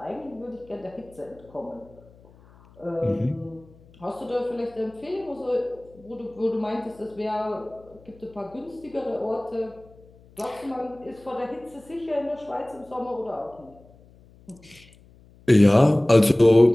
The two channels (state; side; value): noise; left; hum, 26 dB below the sound